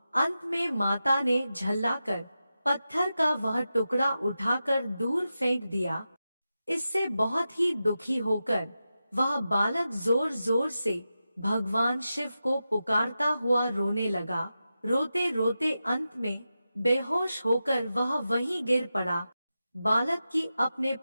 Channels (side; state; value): both; inverted; correlation -0.91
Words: अंत में माता ने झल्लाकर पत्थर का वह टुकड़ा उठाकर दूर फेंक दिया। इससे बहुत ही दुखी होकर वह बालक जोर जोर से भगवान शिव को पुकारता हुआ रोने लगा। रोते रोते अंत में बेहोश होकर वह वहीं गिर पड़ा। बालक की अपने